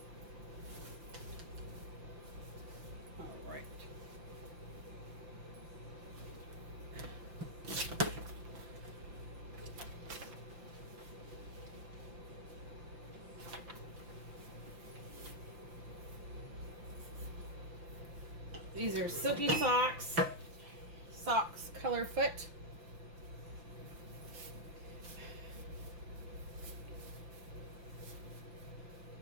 All right. These are Silky socks. Socks color foot.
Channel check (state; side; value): late; left; 5.8 ms